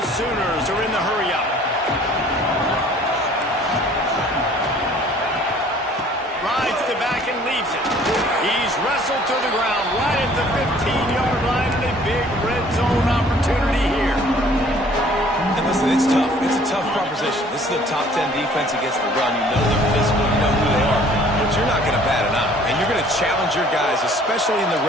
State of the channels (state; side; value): normal; both; correlation 0.55